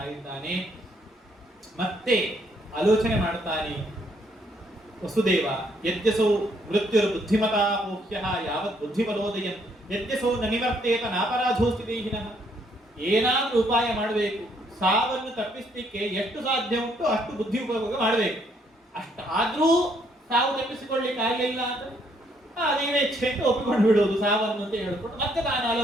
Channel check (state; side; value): normal; both; correlation 0.70